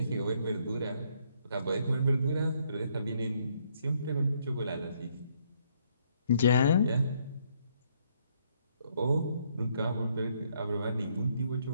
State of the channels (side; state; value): both; inverted; correlation -0.70